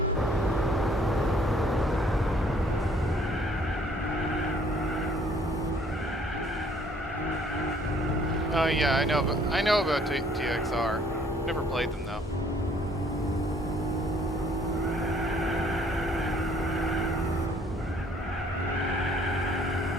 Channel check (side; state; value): both; normal; correlation 0.60